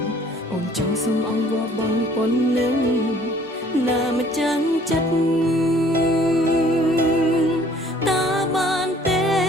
អូនចង់សុំអង្វរបងប៉ុណ្ណឹងណាមិនចាំងចិត្ត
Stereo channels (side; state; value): both; normal; correlation 0.56